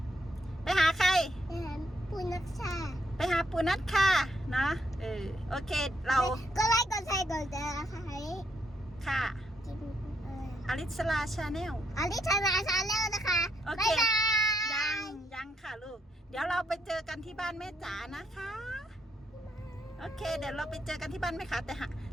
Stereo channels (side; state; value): both; normal; correlation 0.75